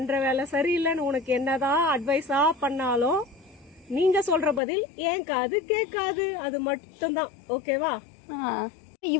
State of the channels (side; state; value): right; drops out; at 4.6 s